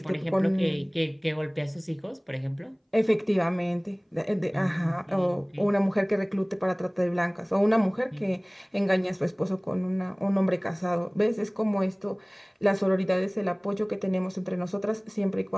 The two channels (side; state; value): both; identical; correlation 1.00